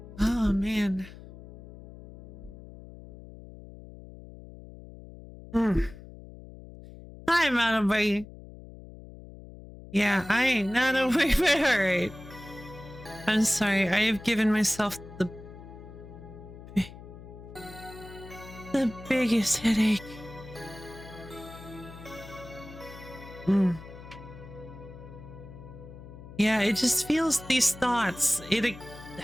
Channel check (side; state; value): left; noise; hum, 16 dB below the sound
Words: Oh, man. Hi, Manabai. Yeah, I ain't not away, but alright. I'm sorry, I have given myself the biggest headache. Yeah, it just feels these thoughts. It